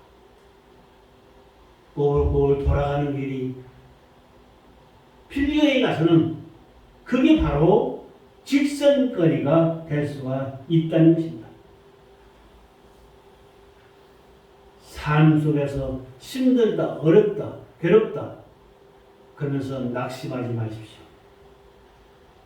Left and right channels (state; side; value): identical; both; correlation 1.00